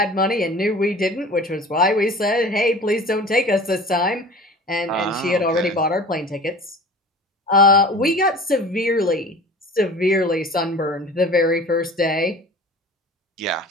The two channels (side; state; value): both; normal; correlation 0.40